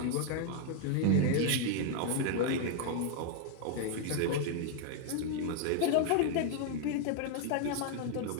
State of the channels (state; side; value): different; both; correlation 0.00